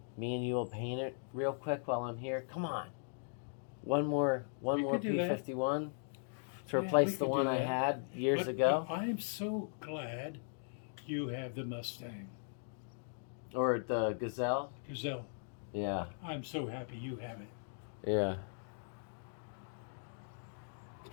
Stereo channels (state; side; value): silent; right; digital silence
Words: Me and you will paint it real quick while I'm here. Come on. One more could do that. P-51 to Yeah, replace we the could one do I that. had years But ago. I am so glad you have the Mustang. Or the Gazelle. Gazelle. Yeah. I'm so happy you have it. Yeah.